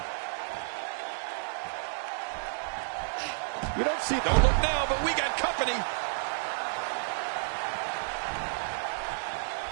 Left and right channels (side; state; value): left; silent; digital silence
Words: You don't see... Don't look now, but we got company.